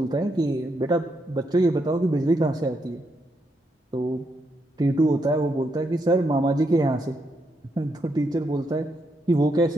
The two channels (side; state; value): both; normal; correlation 0.79